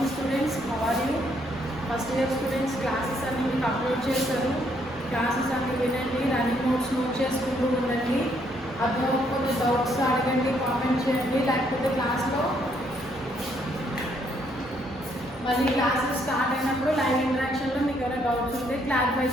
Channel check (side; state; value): both; normal; correlation 0.71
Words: students, how are you? First year students classes అన్ని మీకు upload చేస్తారు. Classes అన్ని వినండి, రన్నింగ్ నోట్స్ నోట్ చేసుకుంటూ ఉండండి. అర్థమవుతుంది డౌట్స్ అడగండి, కామెంట్ చేయండి. లేకపోతే క్లాస్లో మళ్ళీ క్లాసెస్ స్టార్ట్ అయినప్పుడు లైవ్ ఇంటరాక్షన్లో మీకు ఏమైనా డౌట్స్ ఉంటే క్లారిఫై